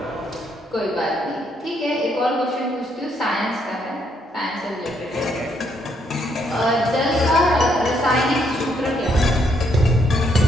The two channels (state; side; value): normal; both; correlation 0.73